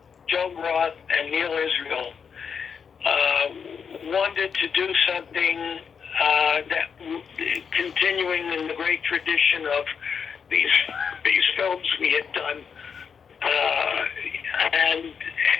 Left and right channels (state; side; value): quieter; right; 6.5 dB